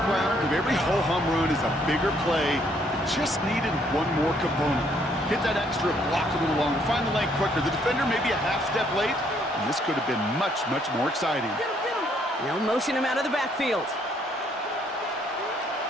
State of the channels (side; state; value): both; normal; correlation 0.68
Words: of every ho-hum run is a bigger play that just needed one more component. Hit that extra block a little longer, find the lane quicker. The defender may be a half step late, and this could have been much, much more exciting. They'll motion him out of the backfield.